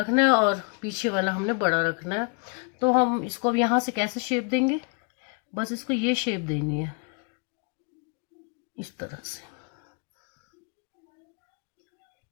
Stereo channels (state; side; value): quieter; right; 37.7 dB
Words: है और पीछे वाला हमने बड़ा रखना है, तो हम इसको अब यहाँ से कैसे शेप देंगे, बस इसको ये शेप देनी है इस तरह से।